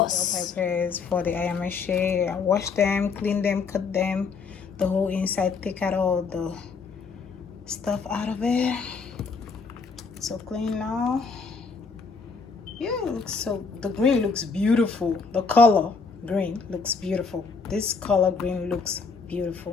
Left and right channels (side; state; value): right; quieter; 4.9 dB